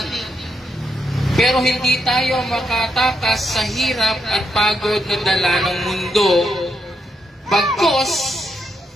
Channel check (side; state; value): both; normal; correlation 0.81